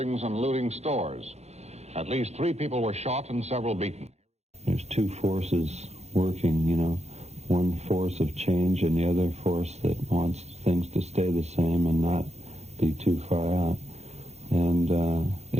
and looting stores. At least 3 people were shot and several beaten. There's 2 forces working, one force of change and the other force that wants things to stay the same and not be too far out. And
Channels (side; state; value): left; late; 0.31 ms